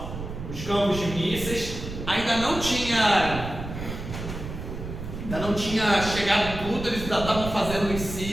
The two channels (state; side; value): noise; right; rumble, 8 dB below the sound